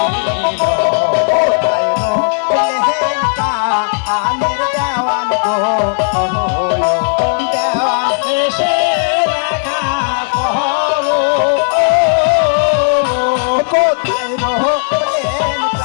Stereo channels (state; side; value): silent; right; digital silence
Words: আনের দেওয়ান গো দেওয়ান এসে দেখা করো কোথায় রহ